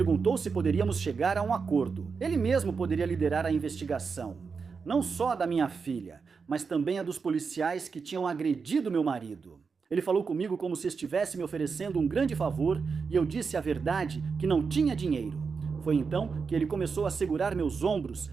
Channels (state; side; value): quieter; left; 5.3 dB